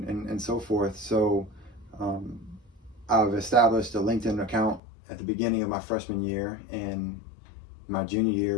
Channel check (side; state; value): right; drops out; at 4.8 s